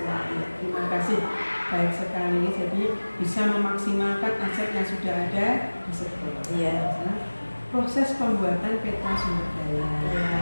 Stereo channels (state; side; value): inverted; both; correlation -1.00